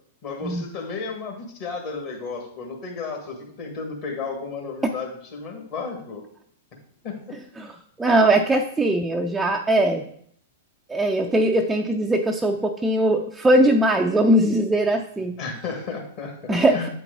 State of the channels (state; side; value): normal; both; correlation 0.54